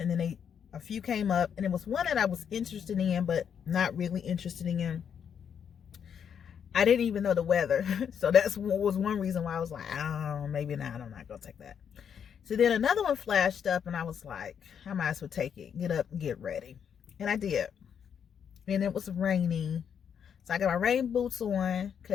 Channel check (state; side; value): quieter; right; 7.9 dB